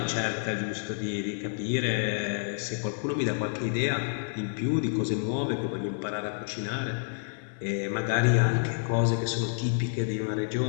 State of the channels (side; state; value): right; silent; 59 dB below the other